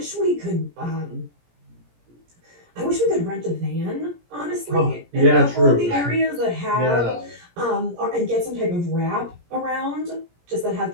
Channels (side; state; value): left; late; 17 ms